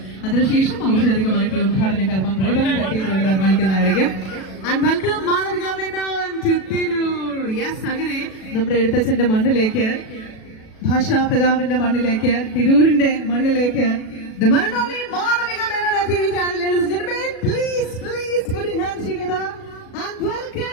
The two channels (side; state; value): right; late; 37 ms